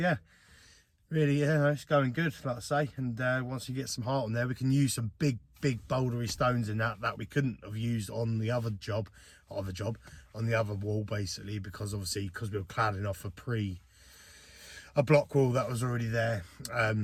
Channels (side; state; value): both; identical; correlation 1.00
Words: really, yeah, it's going good, like I say. And once you get some heart on there, we can use some big bouldery stones in that we couldn't have used on the other job, on the other wall basically, because we were cladding off a block wall that was already there.